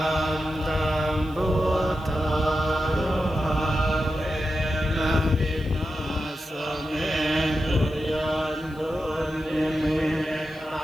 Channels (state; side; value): noise; left; hiss, 27 dB below the sound